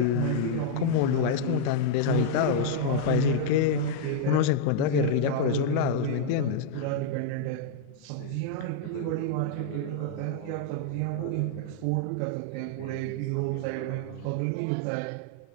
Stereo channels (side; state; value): both; different; correlation -0.01